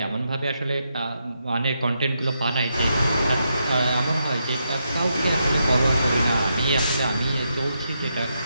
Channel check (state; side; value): inverted; both; correlation -0.82